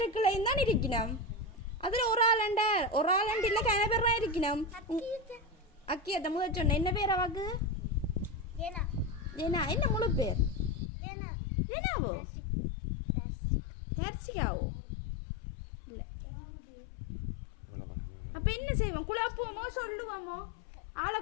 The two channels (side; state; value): right; drops out; at 10.9 s